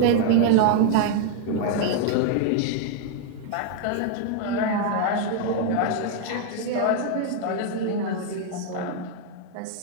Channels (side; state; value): both; different; correlation 0.00